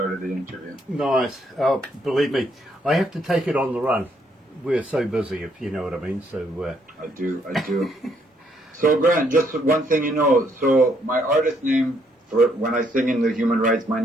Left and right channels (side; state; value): both; normal; correlation 0.71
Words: the interview. Nice. Oh, believe me, I have to take it on the run. We're so busy, if you know what I mean. So I do. So, Grant, just one thing you know. So, my artist name, for when I sing in the Human Rights, my